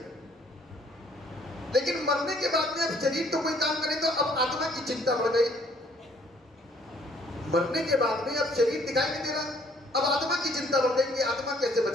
लेकिन मरने के बाद में अब शरीर तो कोई काम करे तो अब आत्मा की चिंता बढ़ गई। मरने के बाद में अब शरीर दिखाई नहीं दे रहा, अब आत्मा की चिंता बढ़ गई कि आत्मा कैसे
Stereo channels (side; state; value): both; normal; correlation 0.62